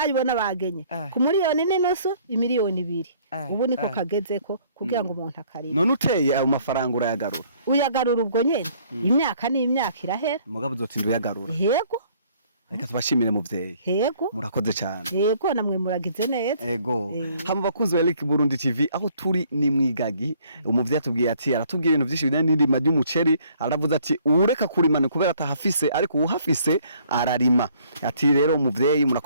bagenye ku miliyoni n'inusu, imiliyoni 2. Ubu niko kagezeko kugira ngo umuntu akarima. None uteye ayo mafaranga urayagarura? Uyagarura ubwo nyene imyaka n'imyaka irahera. Mugabo uzotinda uyagarura? Yego. Reka tubashimire muvyeyi. Yego. Murakoze cyane. Yego namwe muragize neza. Yego. Hama bakunzi wa Eric Burundi TV aho turi ni mwigagi. Umuvyeyi atubwiye ati aratubwiye ibintu byinshi bijanye n'indima ry'umuceri, aravuze ati ureka kurimana kubera atahafise ariko uhafise ararima. Ati rero umuvyeyi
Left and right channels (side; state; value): both; inverted; correlation -0.60